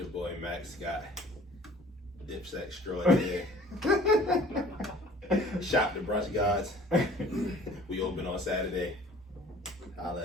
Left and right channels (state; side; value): normal; both; correlation 0.50